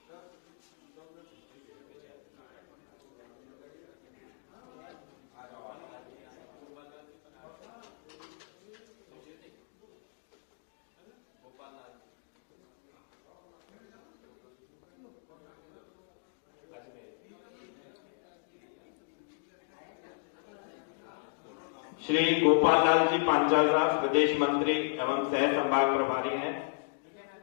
श्री गोपाल लाल जी पांचाल साहब, प्रदेश मंत्री एवं सह संभाग प्रभारी हैं,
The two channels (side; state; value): right; silent; digital silence